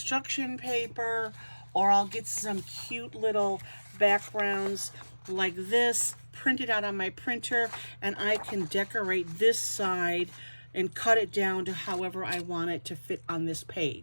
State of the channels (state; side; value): inverted; both; correlation -1.00